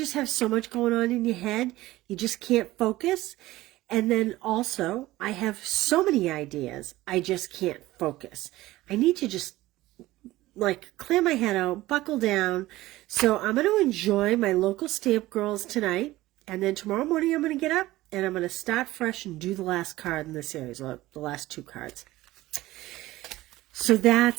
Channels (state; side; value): quieter; left; 17.3 dB